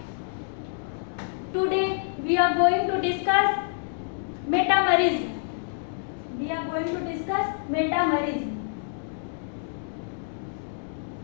Today we are going to discuss metamerism. We are going to discuss metamerism.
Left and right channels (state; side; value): silent; right; digital silence